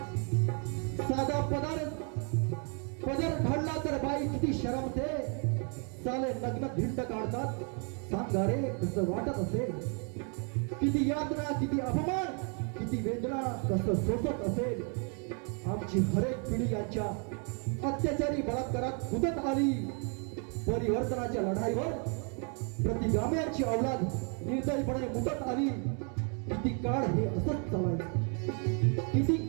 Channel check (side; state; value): left; quieter; 39.3 dB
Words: साधा पदर घडला तर बाई किती शरमते, साले लग्न धिंड काढतात सांगा रे कसं वाटत असेल। किती यातना, किती अपमान, किती वेदना कसं सोसत असेल। आमची हरेक पिढी यांच्या अत्याचारी बलात्कारात कुदत आली, परिवर्तनाच्या लढाईवर प्रतिगाम्यांची अवलाद निर्दयीपणे मुदत आली। किती काळ हे असंच चालायचं, किती